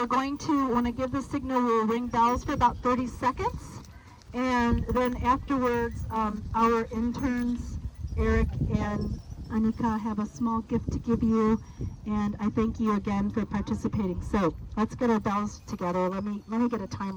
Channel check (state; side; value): identical; both; correlation 1.00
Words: going to, when I give the signal, we'll ring bells for about 30 seconds. And then afterwards, our interns, Eric and Anika have a small gift to give you, and I thank you again for participating. So let's get our bells together. Let me get a